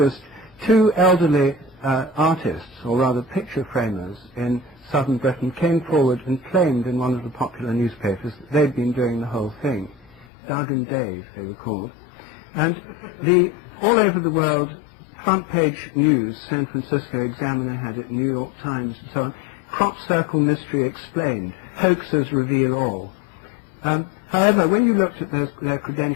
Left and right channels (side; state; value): right; drops out; at 10.2 s